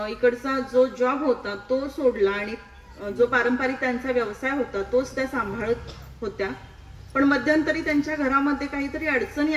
इकडचा जो जॉब होता तो सोडला आणि जो पारंपरिक त्यांचा व्यवसाय होता तोच त्या सांभाळत होत्या. पण मध्यंतरी त्यांच्या घरामध्ये काहीतरी अडचणी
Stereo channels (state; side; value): identical; both; correlation 1.00